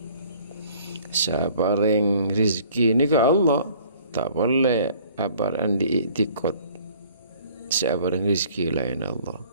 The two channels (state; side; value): inverted; both; correlation -0.54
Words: Siapa yang rizki nika Allah. Tak boleh apa yang diiktikot siapa yang rizki lain Allah.